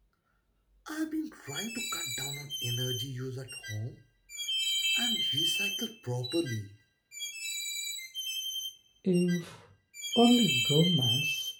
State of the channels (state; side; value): identical; both; correlation 1.00